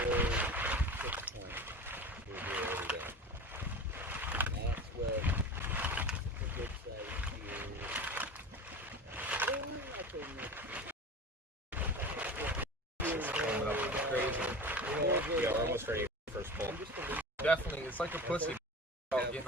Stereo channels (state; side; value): normal; both; correlation 0.33